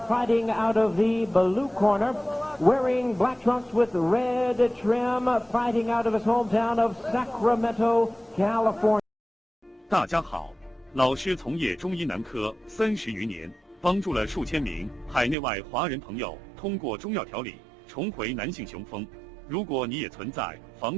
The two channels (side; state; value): left; drops out; at 15.4 s